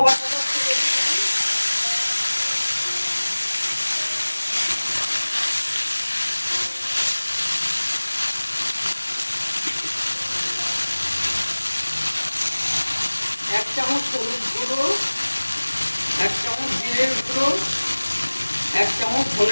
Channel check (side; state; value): both; inverted; correlation -1.00